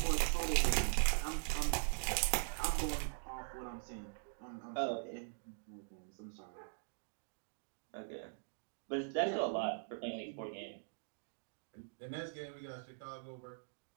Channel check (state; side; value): silent; left; digital silence